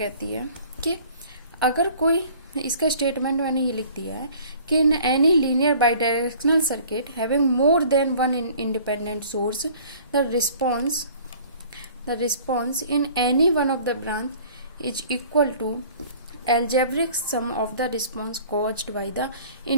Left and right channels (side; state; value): both; inverted; correlation -0.50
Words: है कि अगर कोई, इसका स्टेटमेंट मैंने ये लिख दिया है कि in any linear bidirectional circuit having more than one independent source the response in any one of the branch is equal to algebraic sum of the response caused by the